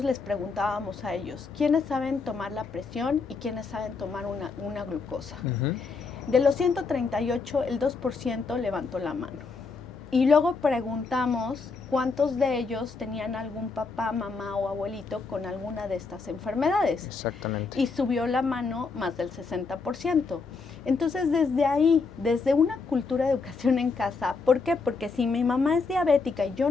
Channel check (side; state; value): right; quieter; 4.5 dB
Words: les preguntábamos a ellos, ¿quiénes saben tomar la presión y quiénes saben tomar una glucosa? De los 138, el 2% levantó la mano. Y luego preguntamos cuántos de ellos tenían algún papá, mamá o abuelito con alguna de estas enfermedades. Exactamente. Y subió la mano más del 60%. Entonces, desde ahí, desde una cultura de educación en casa, ¿por qué? Porque si mi mamá es diabética y yo